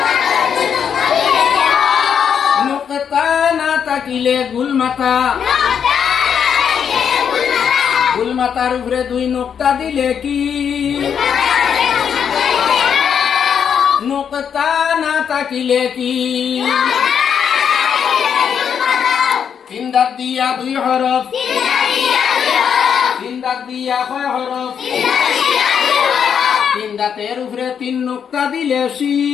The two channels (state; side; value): quieter; right; 7.7 dB